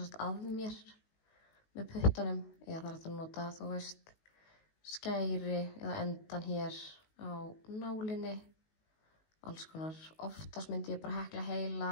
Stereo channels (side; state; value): right; late; 19 ms